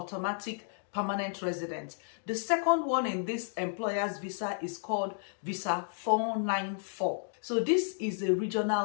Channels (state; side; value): silent; right; digital silence